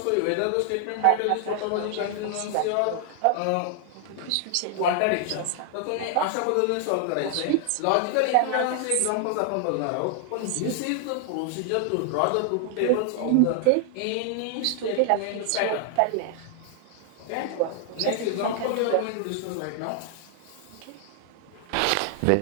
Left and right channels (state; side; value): different; both; correlation 0.00